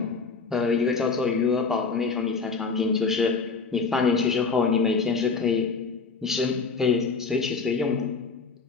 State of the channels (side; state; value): right; quieter; 4.7 dB